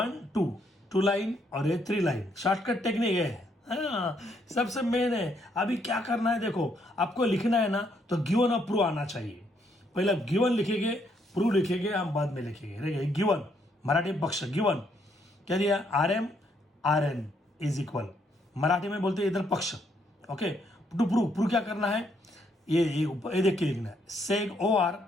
2 लाइन और ये 3 लाइन, शॉर्टकट टेक्निक है, हाँ सबसे मेन है। अभी क्या करना है, देखो आपको लिखना है ना, तो गिवन और प्रूव आना चाहिए। पहले गिवन लिखेंगे, प्रूव लिखेंगे, हम बाद में लिखेंगे। गिवन मराठी पक्ष, गिवन क्या दिया, R N is equal, Marathi में बोलते हैं इधर पक्ष। ओके, टू प्रूव क्या करना है, ये देख के लिखना है, seg O R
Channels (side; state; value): both; normal; correlation 0.72